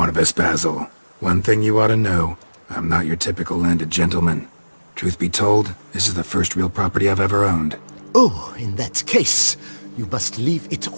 Basil. One thing you ought to know. I'm not your typical landed gentleman. Truth be told, this is the first real property I've ever owned. Oh, in that case, you must leave it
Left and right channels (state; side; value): inverted; both; correlation -1.00